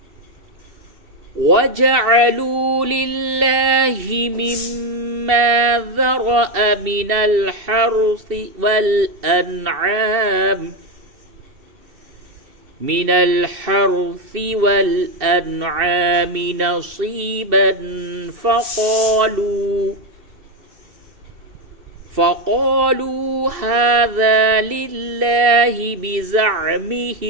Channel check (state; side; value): late; left; 2.7 ms